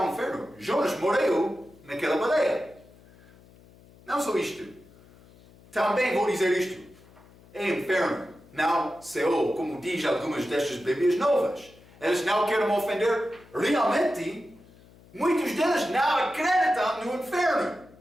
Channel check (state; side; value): noise; left; hum, 25 dB below the sound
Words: inferno. Jonas morreu naquela baleia. Não só isto. Também vou dizer isto. É inferno, não Seol, como diz algumas destas Bíblias novas. Eles não querem ofender. Realmente, muitos deles não acreditam no inferno.